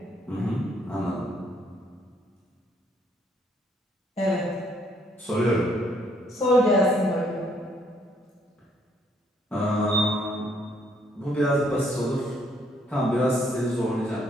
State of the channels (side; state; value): both; normal; correlation 0.68